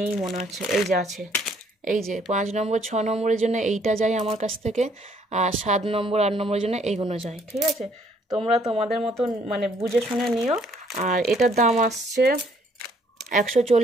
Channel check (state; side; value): normal; both; correlation 0.65